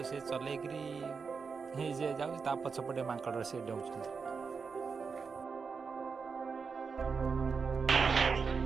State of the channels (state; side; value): quieter; left; 5.3 dB